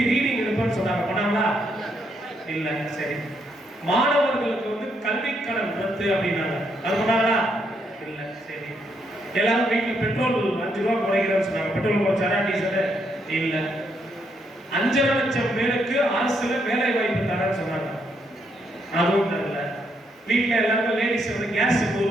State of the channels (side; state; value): both; normal; correlation 0.76